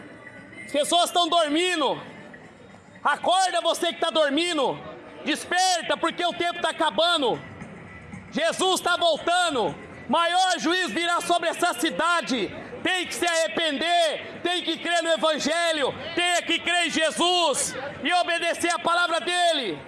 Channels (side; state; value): both; identical; correlation 1.00